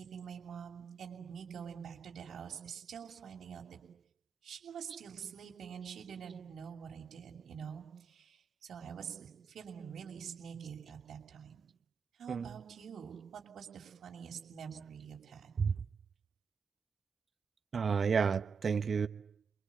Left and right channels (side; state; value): left; quieter; 5.9 dB